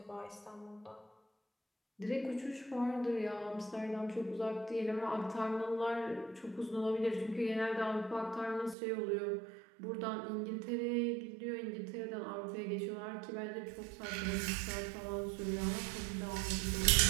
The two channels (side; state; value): left; drops out; at 8.8 s